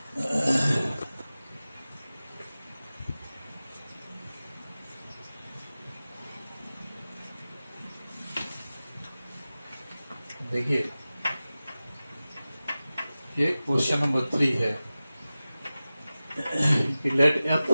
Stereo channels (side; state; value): both; inverted; correlation -0.96